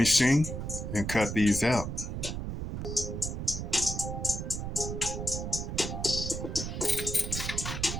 and cut these out.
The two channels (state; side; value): noise; right; rumble, 4 dB below the sound